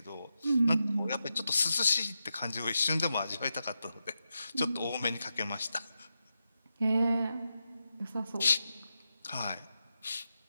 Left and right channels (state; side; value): inverted; both; correlation -0.87